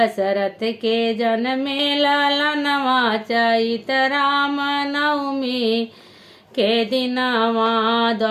के जन्मे ललनवा चैत राम नवमी के दिनवा।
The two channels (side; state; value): both; identical; correlation 1.00